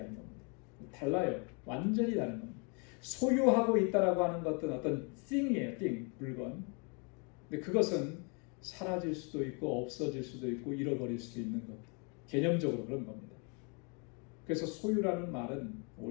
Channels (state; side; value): quieter; right; 35.1 dB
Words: 겁니다. 달라요. 완전히 다른 겁니다. 소유하고 있다라고 하는 것은 어떤 thing이에요. thing, 물건. 근데 그것은 사라질 수도 있고 없어질 수도 있고 잃어버릴 수도 있는 것. 개념적으로 그런 겁니다. 그래서 소유라는 말은